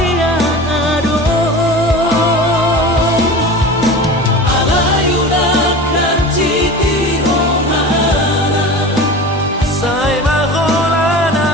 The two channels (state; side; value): normal; both; correlation 0.33